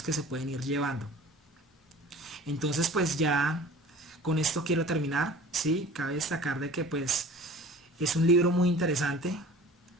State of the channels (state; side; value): normal; both; correlation 0.44